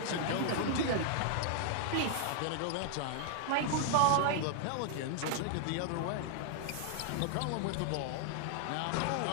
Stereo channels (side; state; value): both; different; correlation 0.00